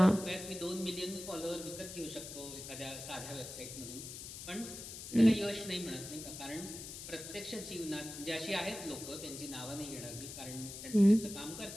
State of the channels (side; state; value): left; noise; hiss, 10 dB below the sound